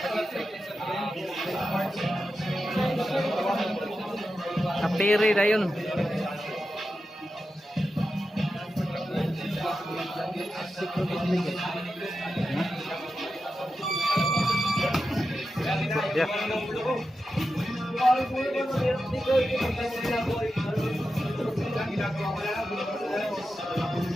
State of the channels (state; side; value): normal; both; correlation 0.90